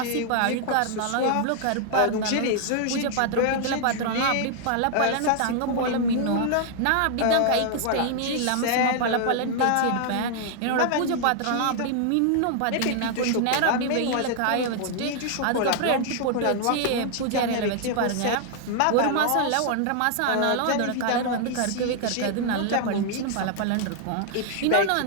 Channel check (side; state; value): both; different; correlation 0.00